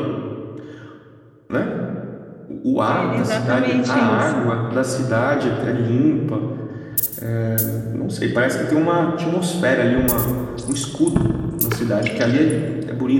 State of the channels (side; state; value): both; identical; correlation 1.00